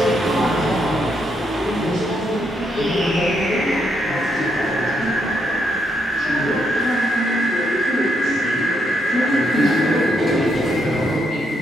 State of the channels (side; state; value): both; normal; correlation 0.77